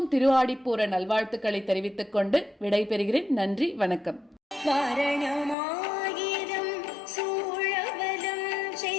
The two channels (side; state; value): right; drops out; at 5.6 s